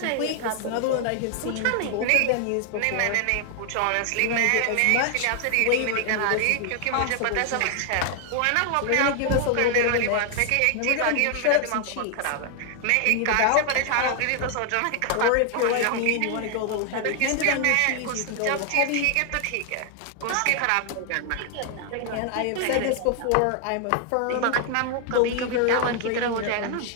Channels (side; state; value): both; different; correlation 0.00